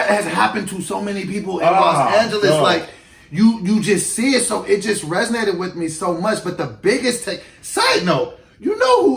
has happened to so many people in Los Angeles. God. Like, you just see it, so it just resonated with me so much. But the biggest side note, you know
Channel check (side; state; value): both; identical; correlation 1.00